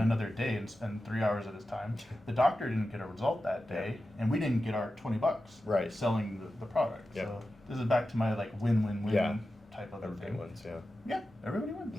another day and spend 3 hours at his time, the doctor didn't get a result that day, and we didn't get our $20 Right. selling the product. Yeah. So this is back to my like win-win-win Yeah. type of Everybody thing. wins, yeah. Yeah, everybody wins.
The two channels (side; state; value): both; normal; correlation 0.92